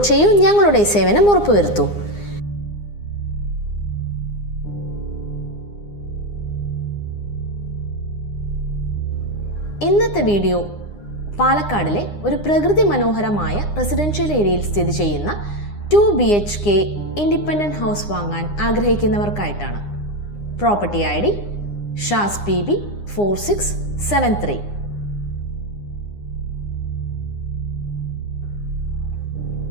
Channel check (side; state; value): right; late; 9.8 ms